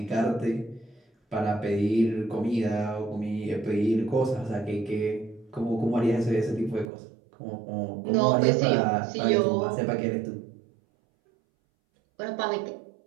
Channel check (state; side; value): drops out; left; at 6.9 s